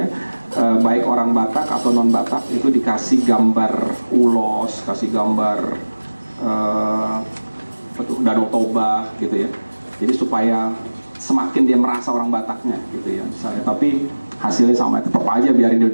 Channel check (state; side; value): inverted; both; correlation -1.00